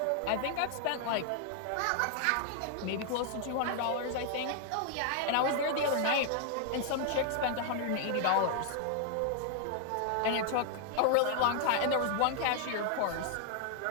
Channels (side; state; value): both; different; correlation 0.00